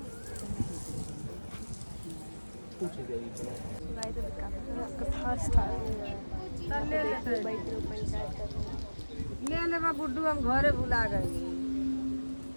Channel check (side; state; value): both; inverted; correlation -1.00